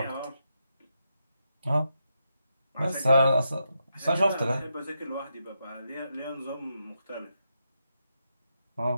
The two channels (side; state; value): both; inverted; correlation -0.84